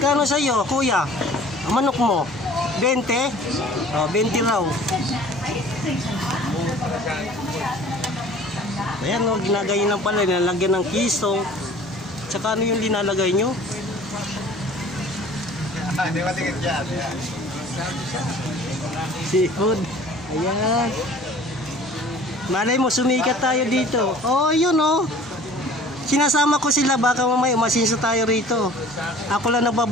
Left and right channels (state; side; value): normal; both; correlation 0.48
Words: sa iyo, kuya? Ang manok mo? 20? Oh, 20 raw. Ayan, oh, ginagayin lang pala, nilalagyan ng kiso. Tsaka ano yung linalagay nyo? Hindi matingin dyan. Seafood. Ayan. Malay mo, sumikat tayo dito. Oh, yun, oh. Sinasama ko sila, baka mamaya masinso tayo rito. Ako lang